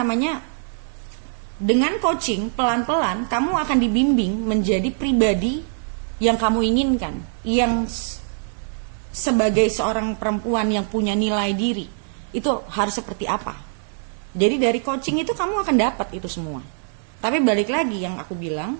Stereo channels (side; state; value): left; silent; digital silence